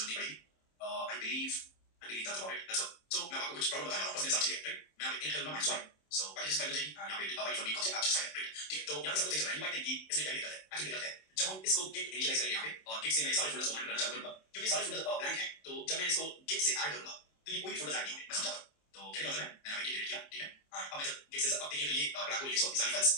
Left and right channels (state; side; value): late; right; 27 ms